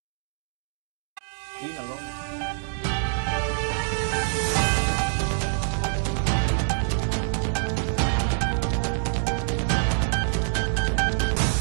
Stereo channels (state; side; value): silent; left; digital silence